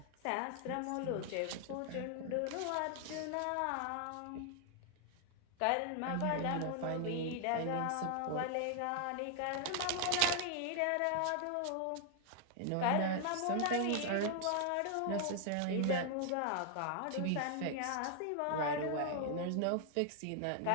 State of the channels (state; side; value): different; both; correlation 0.00